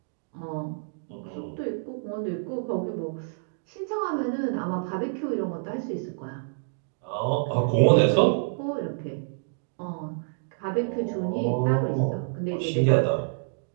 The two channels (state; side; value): silent; left; digital silence